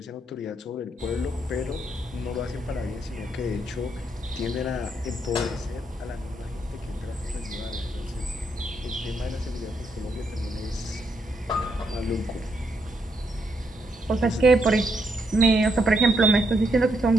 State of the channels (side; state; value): both; normal; correlation 0.77